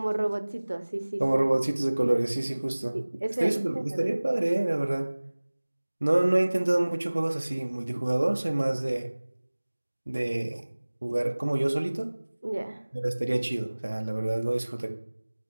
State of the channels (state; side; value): inverted; both; correlation -1.00